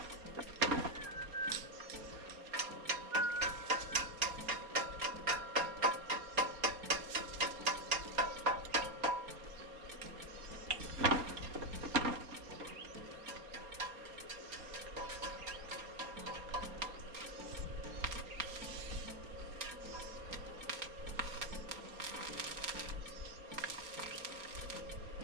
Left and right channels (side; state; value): left; late; 4.3 ms